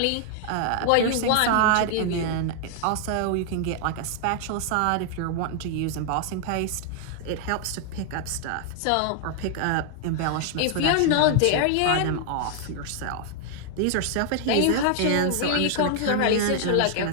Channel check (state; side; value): different; both; correlation 0.00